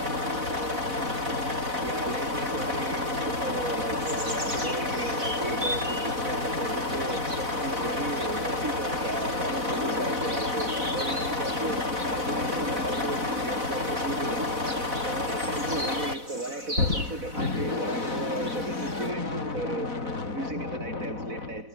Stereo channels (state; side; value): late; left; 4.0 ms